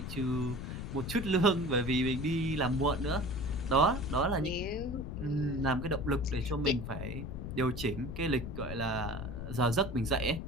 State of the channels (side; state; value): left; noise; rumble, 6 dB below the sound